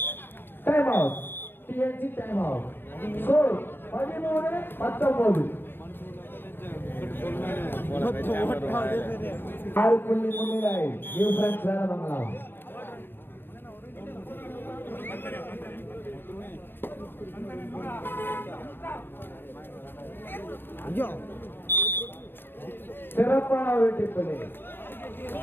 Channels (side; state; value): right; late; 0.10 ms